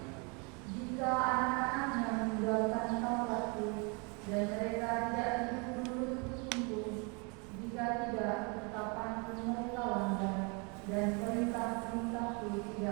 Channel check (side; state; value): left; quieter; 32.5 dB